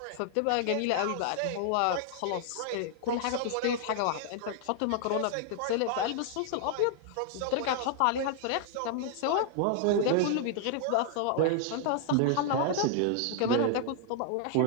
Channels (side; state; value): both; different; correlation -0.01